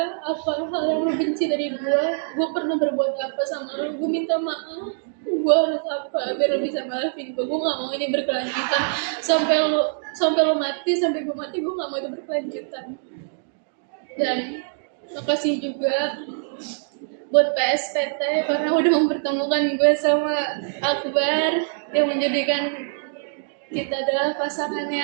apa hal yang lu benci dari gue pernah berbuat apa sama lu, gue minta maaf. Gue harus apa biar lu bisa maafin gue gak mau ini berkelanjutan sampai lu mati, sampai gue mati, gue gak mau itu berkelanjutan. Dan makasih juga buat PSPT karena udah mempertemukan gue sama Akbar yang menjadikan kita adalah pasangan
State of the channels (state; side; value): silent; left; digital silence